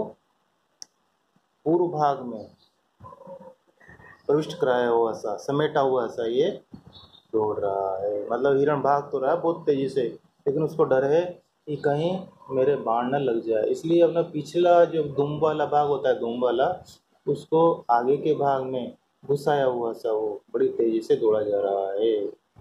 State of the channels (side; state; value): both; identical; correlation 1.00